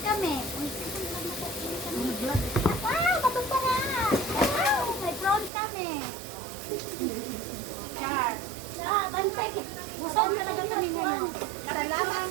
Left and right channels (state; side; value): drops out; left; at 5.5 s